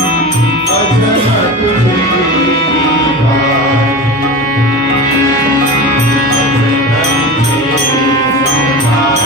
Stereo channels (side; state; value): both; normal; correlation 0.29